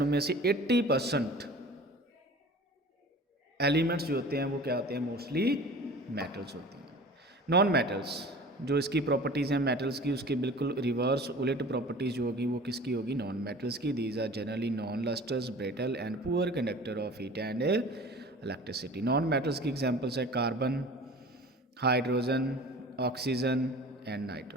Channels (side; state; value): both; normal; correlation 0.42